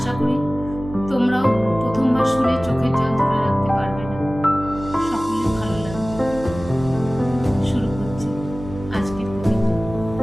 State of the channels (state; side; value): noise; right; hum, 12 dB below the sound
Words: করি তোমরাও প্রথমবার শুনে চোখের জল ধরে রাখতে পারবে না, সকলের ভালো লাগবে। শুরু করছি আজকের কবিতা।